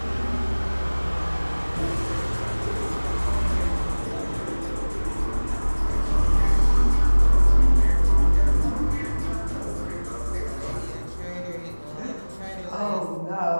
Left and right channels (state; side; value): inverted; both; correlation -1.00